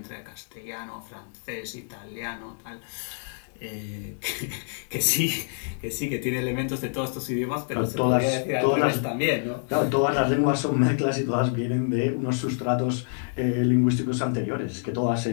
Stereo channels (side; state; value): right; silent; digital silence